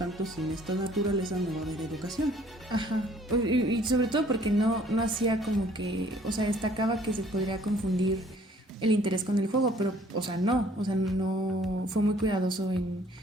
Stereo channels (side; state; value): both; normal; correlation 0.58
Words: sin esta naturaleza no va a haber educación. Ajá, y sobre todo porque no hacía como que, o sea, destacaba que se podría confundir el interés con el juego, pero, o sea, no fue muy cuidadoso en